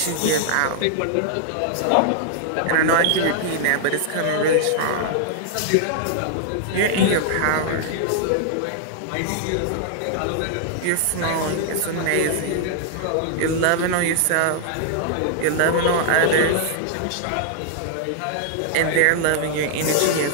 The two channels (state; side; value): different; both; correlation -0.01